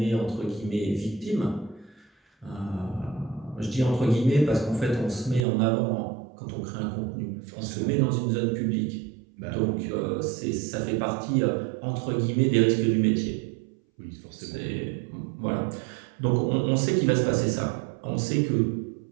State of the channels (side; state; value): left; drops out; at 5.5 s